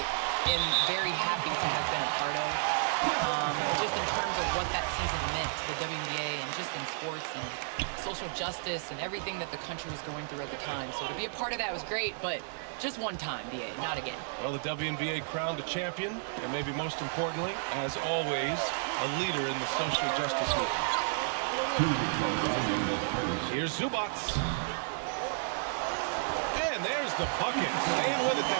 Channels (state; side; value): silent; left; digital silence